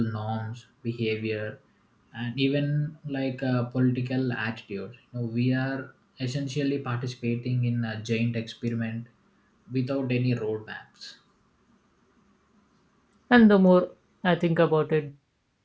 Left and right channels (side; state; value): both; identical; correlation 1.00